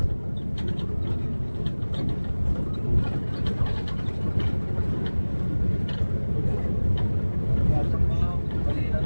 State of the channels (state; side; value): inverted; both; correlation -1.00